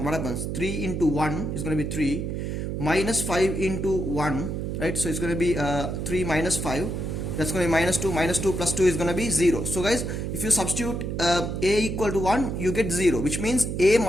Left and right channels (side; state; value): right; noise; hum, 3 dB below the sound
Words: what happens? 3 into 1 is going to be 3, minus 5 into 1, right? So it's going to be 3 minus 5, that's going to be minus 2 plus 2 is going to be 0. So guys, if you substitute a equal to 1, you get 0, which means a